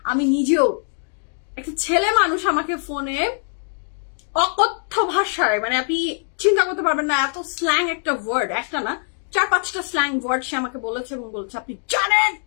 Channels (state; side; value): silent; right; 56 dB below the other